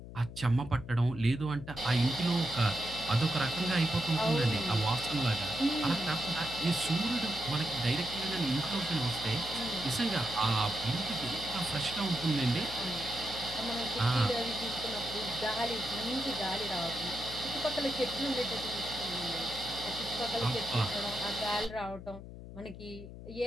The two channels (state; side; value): noise; left; hum, 13 dB below the sound